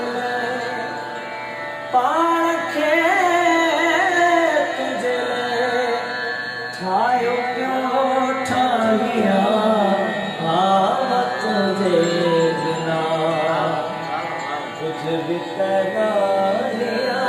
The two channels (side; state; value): both; identical; correlation 1.00